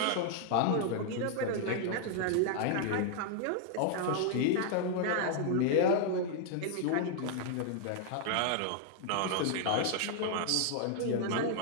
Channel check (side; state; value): both; different; correlation -0.01